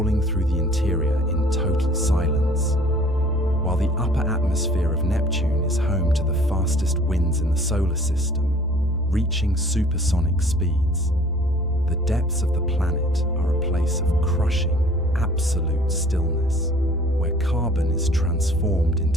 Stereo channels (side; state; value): both; normal; correlation 0.52